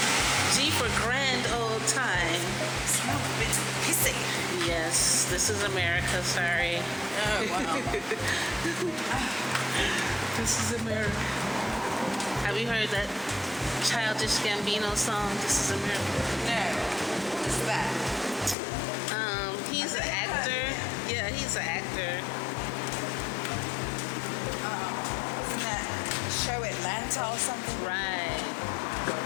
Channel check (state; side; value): drops out; right; at 18.6 s